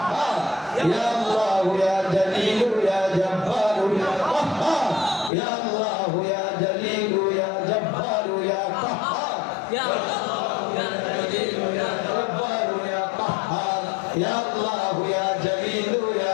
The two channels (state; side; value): drops out; right; at 5.3 s